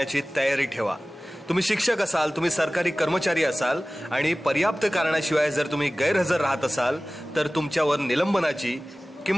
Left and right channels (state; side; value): normal; both; correlation 0.98